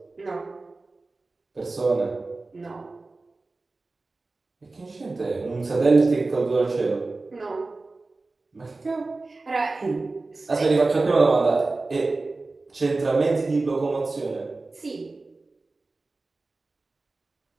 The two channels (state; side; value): quieter; left; 3.4 dB